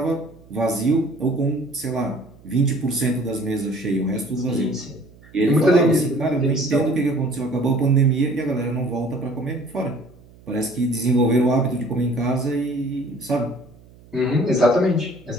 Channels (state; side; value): noise; right; hum, 25 dB below the sound